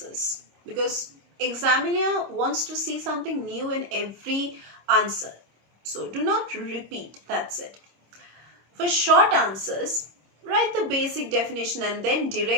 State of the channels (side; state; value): left; late; 26 ms